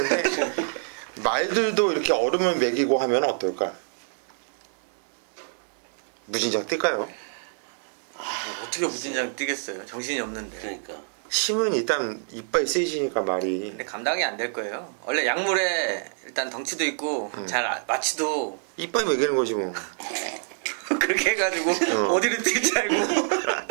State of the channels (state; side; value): silent; left; 61 dB below the other